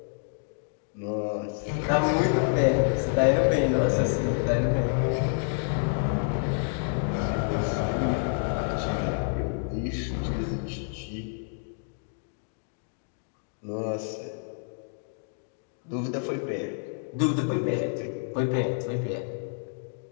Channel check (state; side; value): silent; right; digital silence